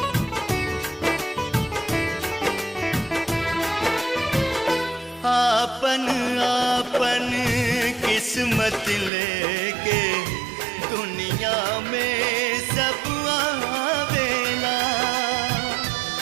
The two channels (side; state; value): left; drops out; at 9.1 s